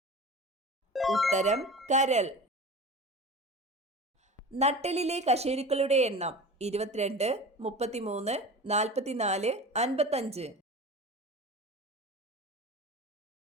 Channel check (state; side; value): normal; both; correlation 0.34